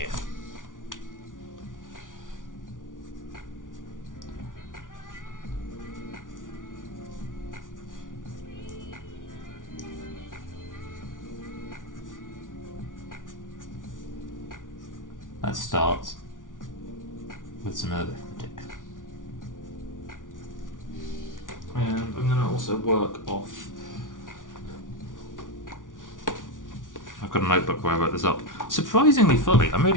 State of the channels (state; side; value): late; right; 0.88 ms